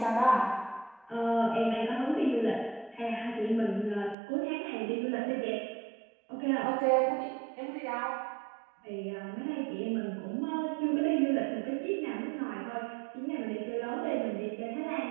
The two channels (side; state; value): left; drops out; at 4.2 s